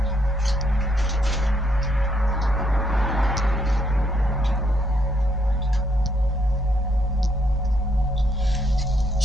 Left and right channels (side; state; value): both; normal; correlation 0.73